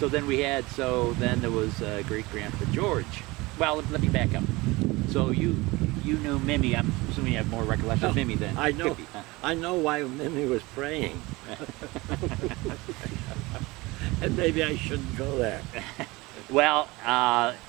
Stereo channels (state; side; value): quieter; left; 22.3 dB